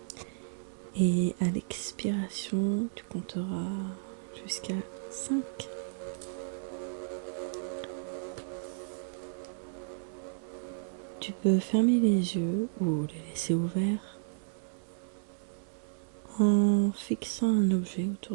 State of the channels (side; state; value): left; silent; digital silence